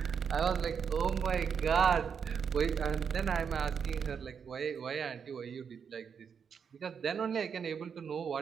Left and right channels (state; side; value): quieter; left; 6.8 dB